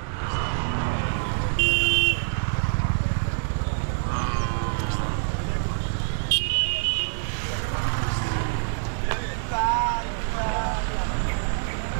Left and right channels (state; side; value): silent; left; 61 dB below the other